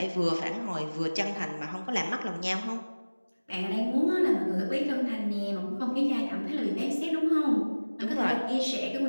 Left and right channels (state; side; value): inverted; both; correlation -1.00